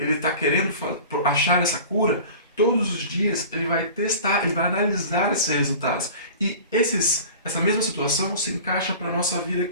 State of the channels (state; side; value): inverted; both; correlation -0.40